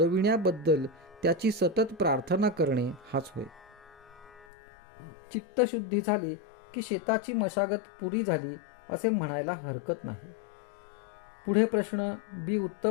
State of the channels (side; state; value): right; drops out; at 4.5 s